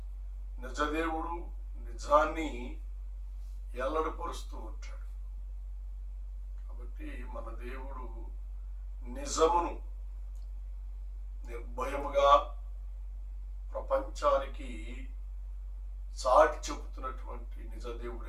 నిజదేవుడు నిజాన్ని ఎల్లడిపరుస్తూ ఉంటాడు. కాబట్టి మన దేవుడు నిజమును నిర్భయముగా ప్రపంచానికి చాటి చెబుతున్నటువంటి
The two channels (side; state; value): both; identical; correlation 1.00